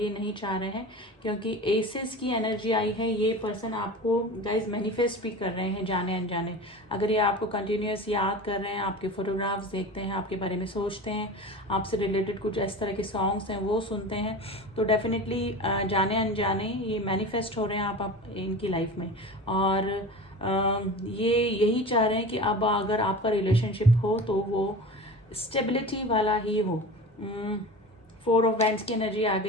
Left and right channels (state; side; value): normal; both; correlation 0.33